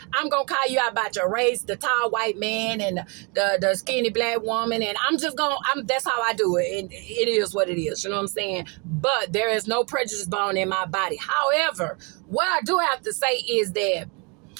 I'm going to call you out about your race, the tall white man and the skinny black woman. And that's how I do it. And it is what it is. You know what I'm saying? But there is no prejudice bone in my body. However, what I do have to say is that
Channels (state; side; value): quieter; left; 31.5 dB